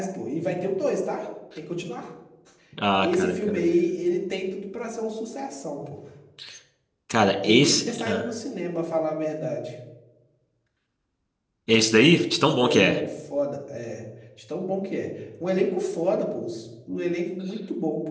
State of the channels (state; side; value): identical; both; correlation 1.00